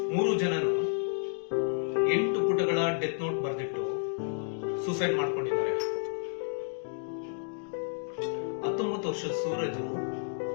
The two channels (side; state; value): right; silent; digital silence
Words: 3 ಜನನು 8 ಪುಟಗಳ ಡೆತ್ ನೋಟ್ ಬರೆದಿಟ್ಟು ಸೂಸೈಡ್ ಮಾಡ್ಕೊಂಡಿದ್ದಾರೆ. 19 ವರ್ಷದ ಸೂರಜು